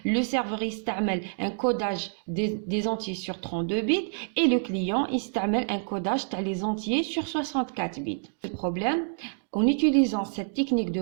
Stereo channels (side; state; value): left; silent; digital silence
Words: Le serveur استعمل un codage des entiers sur 32 bits et le client استعمل un codage des entiers sur 64 bits. Le problème, en utilisant cette technique